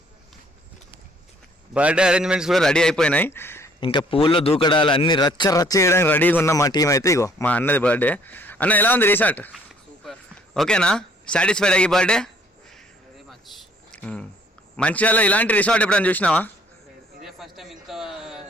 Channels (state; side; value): normal; both; correlation 0.61